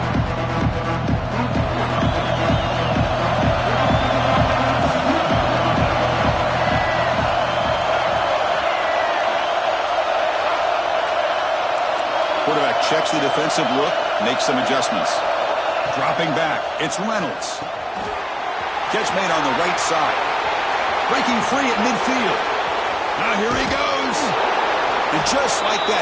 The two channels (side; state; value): both; identical; correlation 1.00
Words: Quarterback checks the defensive look, makes some adjustments. Dropping back, it's Reynolds. Catch made on the right side. Breaking free at midfield. Now here he goes. And just like that,